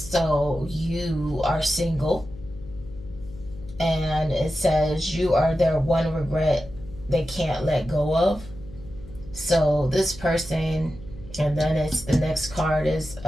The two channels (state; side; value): noise; left; hum, 16 dB below the sound